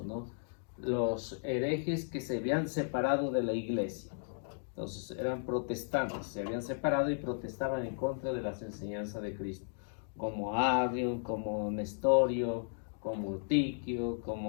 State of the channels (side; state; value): right; silent; digital silence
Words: ¿no? Los herejes que se habían separado de la iglesia. Entonces eran protestantes, se habían separado y protestaban en contra de las enseñanzas de Cristo, como Arión, como Nestorio, como Tiquio,